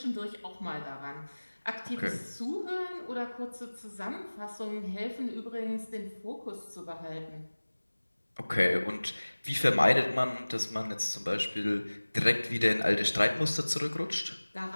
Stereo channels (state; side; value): inverted; both; correlation -1.00